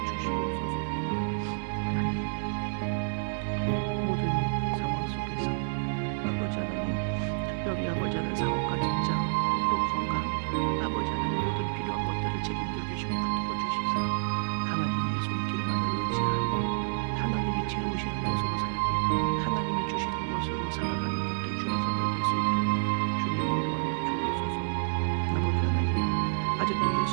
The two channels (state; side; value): silent; left; digital silence